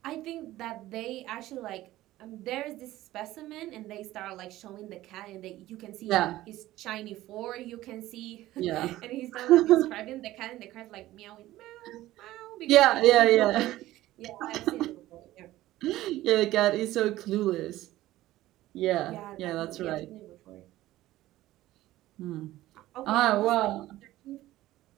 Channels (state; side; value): quieter; left; 15.8 dB